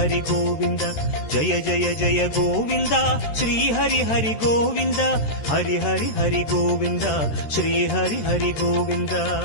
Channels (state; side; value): late; right; 13 ms